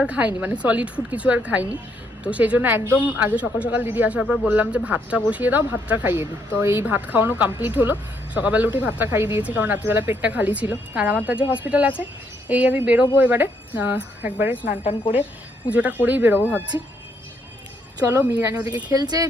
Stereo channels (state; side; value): normal; both; correlation 0.73